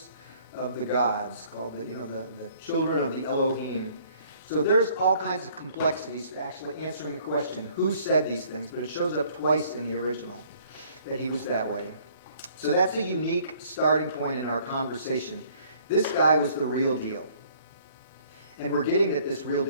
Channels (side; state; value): both; inverted; correlation -0.59